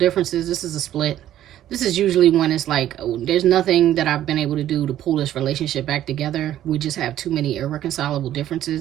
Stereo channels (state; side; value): quieter; left; 12.2 dB